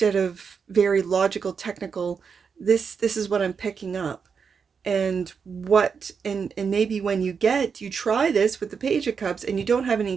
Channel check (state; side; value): quieter; left; 6.1 dB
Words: of very logical, technical. This is what I'm picking up. And maybe when you try this with the Page of Cups and you don't have